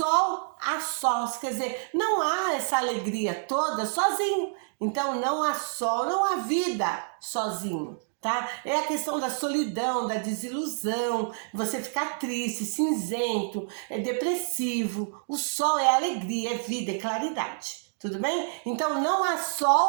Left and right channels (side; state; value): left; silent; 59 dB below the other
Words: há sós, quer dizer, não há essa alegria toda sozinho. Então não há sol, não há vida sozinho, tá? É a questão da solidão, da desilusão, você ficar triste, cinzento, depressivo. O sol é alegria, é vida, é claridade. Tudo bem? Então não há